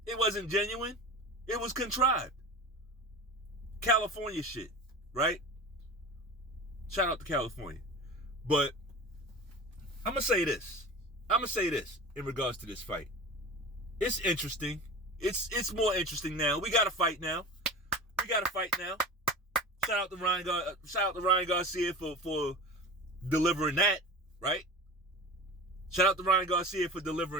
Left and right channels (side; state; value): both; normal; correlation 0.33